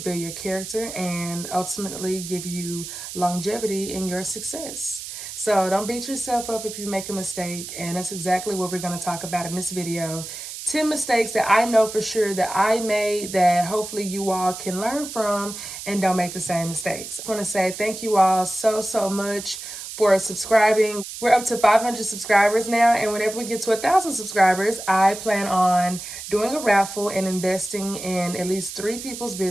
your character and ultimately give you longevity in your success. So don't beat yourself up if you make a mistake, and that's exactly what we're going to talk about in this video. 10 mistakes that I know for sure that I made that hopefully you all can learn from and don't make the same mistakes. I want to say thank you all so much for subscribing. We're up to 500 subscribers now, and whenever we get to 1,000 subscribers, I plan on doing a raffle and investing in at least 3 people's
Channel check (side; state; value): right; noise; hiss, 10 dB below the sound